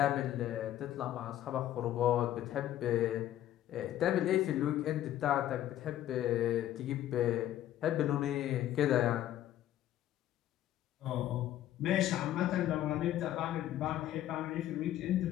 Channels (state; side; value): quieter; right; 12.6 dB